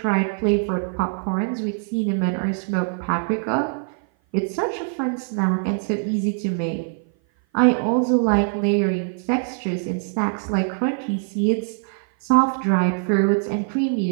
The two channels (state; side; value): silent; left; 57 dB below the other